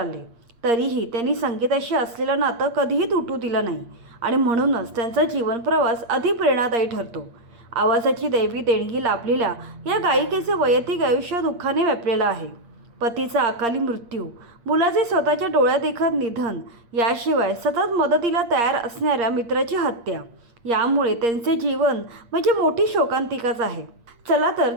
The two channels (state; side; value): late; left; 8.6 ms